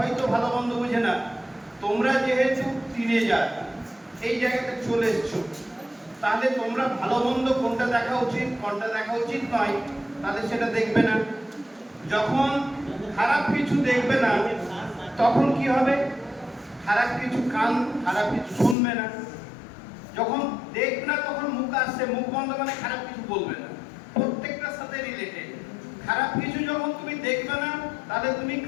ভালো মন্দ বুঝে না, তোমরা যেহেতু টিনেজার এই জায়গাতে চলে এসছো, তাহলে তোমরা ভালো মন্দ কোনটা দেখা উচিত কোনটা দেখা উচিত নয়, তাহলে সেটা দেখবে না। যখন খারাপ কিছু দেখবে না, তখন কি হবে? খারাপ কিছু খারাপ কিছু শুনবে না। যখন দেখবে না তখন মুখ আসছে, মুখ বন্ধ মানে খারাপ কিছু বলবে না। প্রত্যেকটার সাথে রিলেটেড। খারাপ কিছু যখন তুমি দেখবে না, তাহলে তুমি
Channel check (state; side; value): drops out; right; at 18.8 s